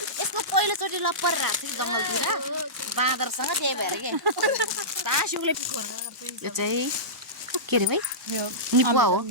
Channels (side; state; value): both; normal; correlation -0.18